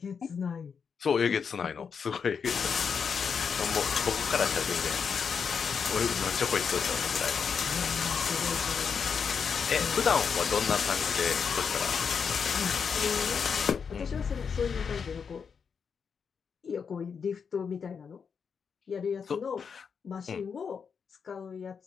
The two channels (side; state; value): right; quieter; 6.3 dB